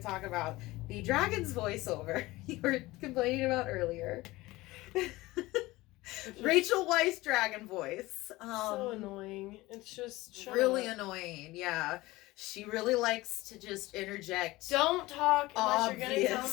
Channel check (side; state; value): right; quieter; 19.5 dB